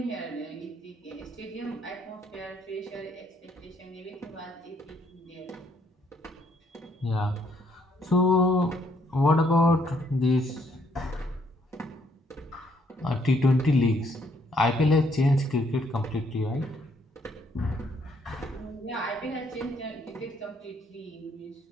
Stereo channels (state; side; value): normal; both; correlation 0.69